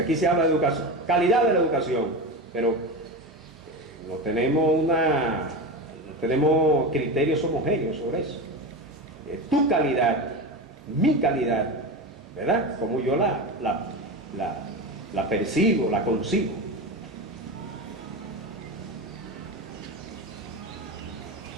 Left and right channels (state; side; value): normal; both; correlation 0.23